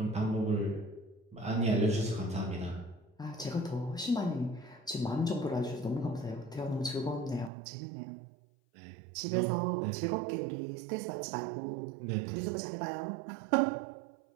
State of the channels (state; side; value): drops out; left; at 7.5 s